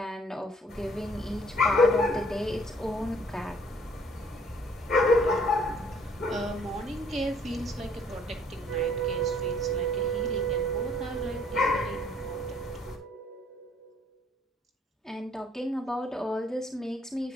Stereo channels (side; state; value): both; normal; correlation 0.61